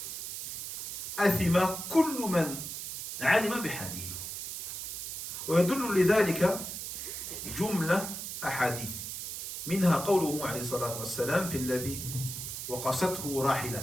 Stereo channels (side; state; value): right; noise; hiss, 6 dB below the sound